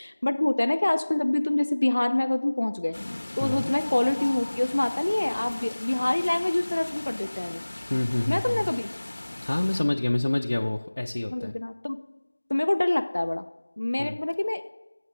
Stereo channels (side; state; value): both; inverted; correlation -1.00